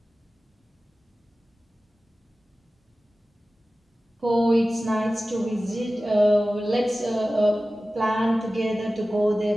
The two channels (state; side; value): normal; both; correlation 0.96